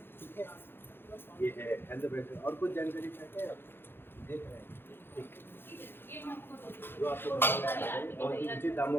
ठीक है, ये है हेल्थ ब्रेसलेट। और कुछ जानकारी चाहते हैं आप? देख रहे हैं, ठीक जो आपको बहुत ही उचित दामों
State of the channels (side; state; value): right; late; 0.10 ms